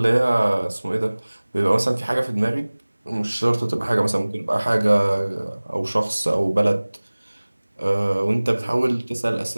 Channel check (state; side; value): inverted; both; correlation -1.00